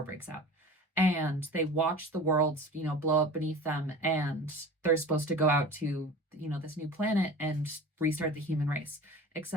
breaks out. And they watch the world, blow up beneath them. And they're supposed to go out to, this new planet and restart the human race.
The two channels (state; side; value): normal; both; correlation 0.37